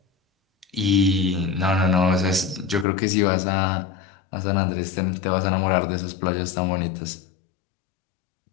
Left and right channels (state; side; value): drops out; right; at 2.9 s